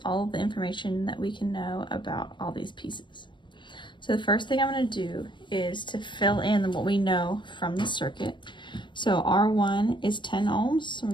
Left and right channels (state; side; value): late; right; 0.23 ms